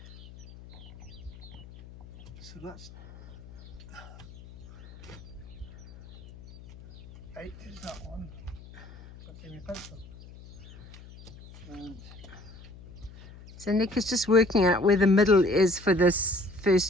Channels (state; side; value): noise; left; hum, 18 dB below the sound